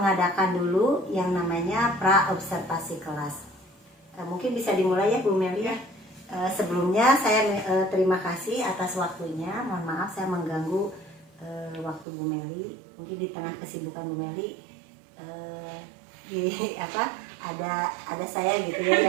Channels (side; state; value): left; drops out; at 12.1 s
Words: dulu yang namanya pra-observasi kelas. Mungkin bisa dimulai ya Bu Meli ya. Sebelumnya saya terima kasih atas waktunya. Mohon maaf saya mengganggu waktu Bu Meli. Mungkin di tengah kesibukan Bu Meli ada saya gitu ya